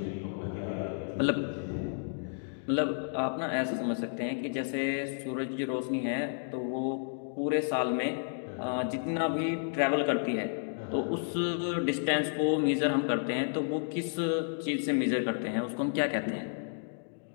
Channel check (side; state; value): right; silent; digital silence